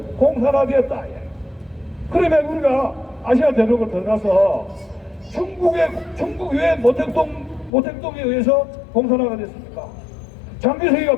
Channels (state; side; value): drops out; right; at 7.7 s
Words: 공산화되었다 이야기야. 그러면 우리가 아시아 대륙을 들어가서 중국 왜 모택동에 의해서 공산화가 됐습니까? 장개석이가